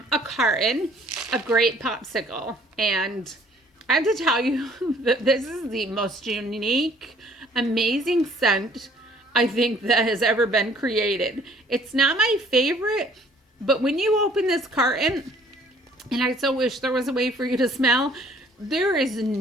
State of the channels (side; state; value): both; normal; correlation 0.57